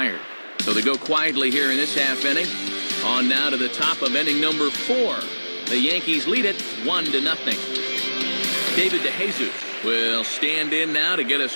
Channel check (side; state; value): both; inverted; correlation -1.00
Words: So they go quietly here in this half inning. On now to the top of inning number 4. The Yankees lead it 1-0. David DeJesus will stand in now to get us